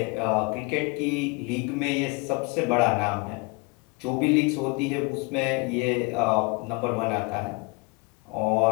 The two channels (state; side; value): quieter; right; 28.8 dB